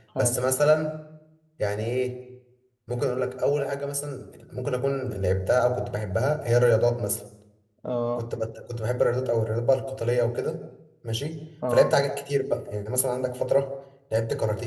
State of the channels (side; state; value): both; identical; correlation 1.00